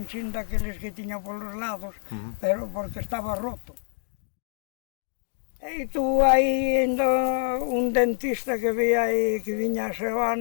daqueles que tiña polos lados, pero porque estaba roto. E tuvo aí ainda un dentista que veía aí, que viña a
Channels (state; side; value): silent; right; 58 dB below the other